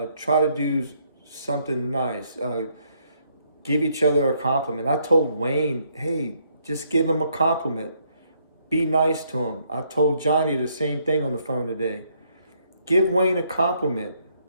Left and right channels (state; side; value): inverted; both; correlation -0.71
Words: to do something nice, give each other a compliment. I told Wayne, hey, just give him a compliment. Be nice to him. I told Johnny the same thing on the phone today. Give Wayne a compliment.